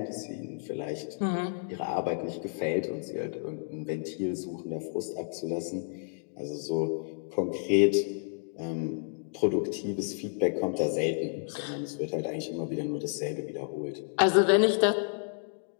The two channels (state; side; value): silent; right; digital silence